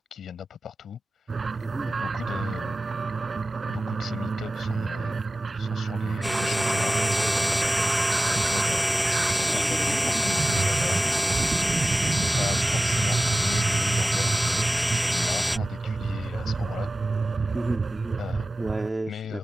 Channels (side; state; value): both; normal; correlation 0.95